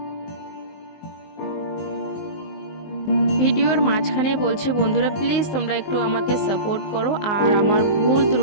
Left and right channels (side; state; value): right; late; 19 ms